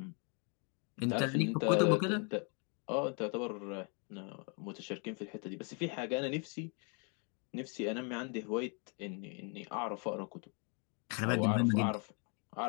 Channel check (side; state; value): right; quieter; 37.2 dB